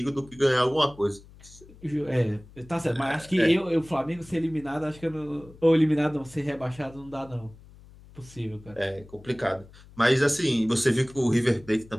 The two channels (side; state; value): left; noise; hum, 22 dB below the sound